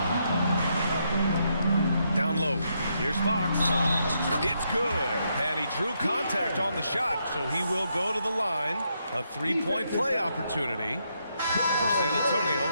Down low. Here's Fox. It's good. And he drew contact on the shot, so he will go to the line. A 3-point play opportunity. For San Antonio,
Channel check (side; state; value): both; inverted; correlation -0.79